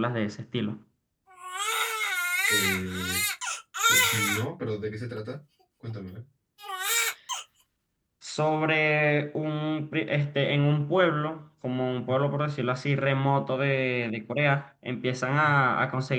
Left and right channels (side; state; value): both; identical; correlation 1.00